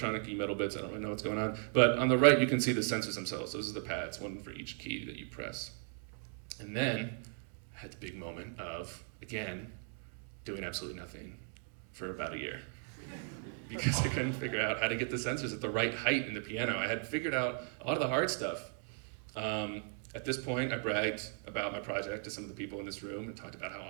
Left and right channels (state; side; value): silent; left; 53 dB below the other